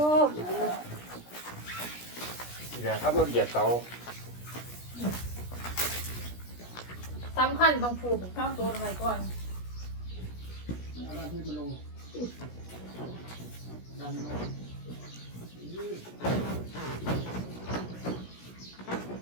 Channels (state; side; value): late; right; 17 ms